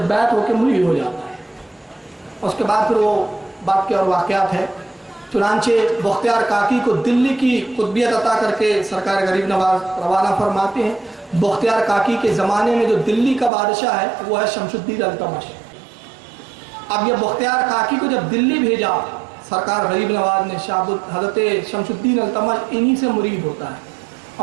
ہو کے مری ہو جاتا ہے. اس کے بعد پھر وہ بات کے اور واقعات ہے. چنانچہ بختیار کاکی کو دلی کی قطبیت عطا کر کے سرکار غریب نواز روانہ فرماتے ہیں. بختیار کاکی کے زمانے میں جو دلی کا بادشاہ ہے وہ ہے شمس الدین التمش. اب یہ بختیار کاکی کو جب دلی بھیجا سرکار غریب نواز نے، حضرت شمس الدین التمش انہی سے مرید ہوتا ہے.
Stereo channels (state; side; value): drops out; left; at 13.5 s